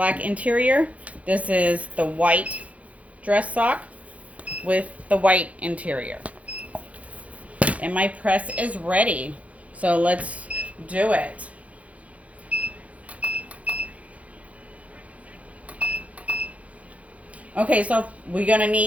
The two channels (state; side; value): late; left; 0.066 ms